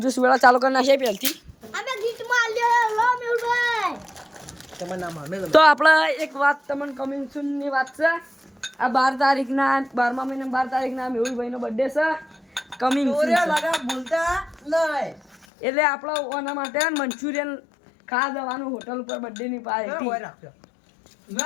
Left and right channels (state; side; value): drops out; right; at 15.5 s